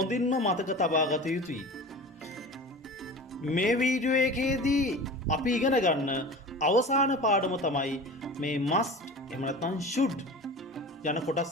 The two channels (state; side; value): normal; both; correlation 0.35